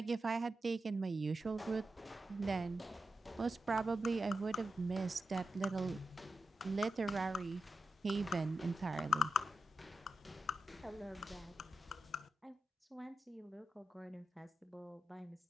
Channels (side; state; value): both; normal; correlation 0.88